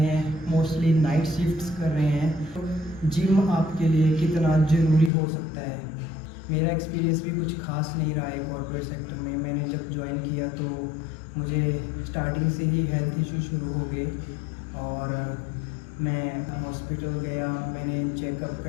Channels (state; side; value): drops out; right; at 5.1 s